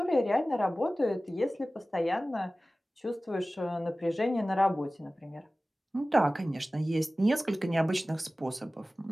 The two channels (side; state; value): both; normal; correlation 0.97